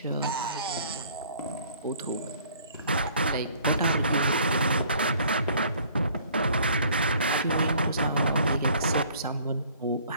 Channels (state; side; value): inverted; both; correlation -0.56